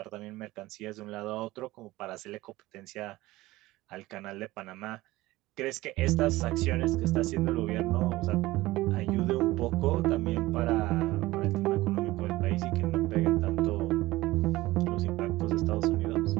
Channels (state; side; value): quieter; left; 18.5 dB